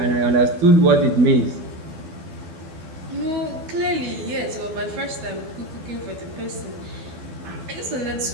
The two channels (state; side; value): late; left; 12 ms